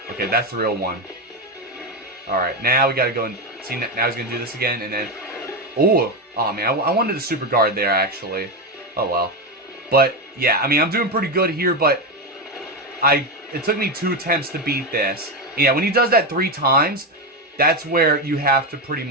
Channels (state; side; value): normal; both; correlation 0.11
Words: Okay, that's the real one. Alright, now we gotta go and... See, now he's gonna do this again, and then... Oh man, I wanted a super guard there, actually. Oh well. But, yeah, I mean, I'm doing pretty good here, but... It took me 2 attempts to beat this. Yeah, when he does that 3 times, that's where you have to pretty